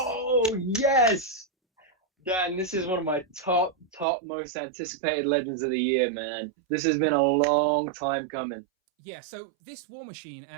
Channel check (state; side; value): drops out; left; at 4.0 s